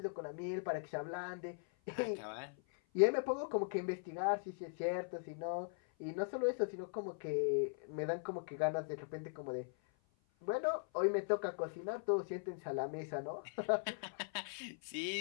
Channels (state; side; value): silent; right; 51 dB below the other